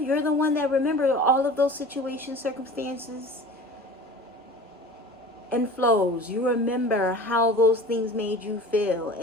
the one that remembers all of those situations, circumstances, and flows. You remember how those things made you feel.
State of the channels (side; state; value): both; normal; correlation 0.40